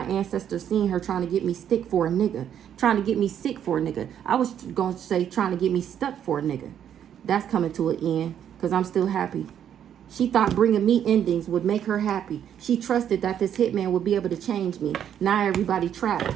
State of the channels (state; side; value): quieter; left; 9.5 dB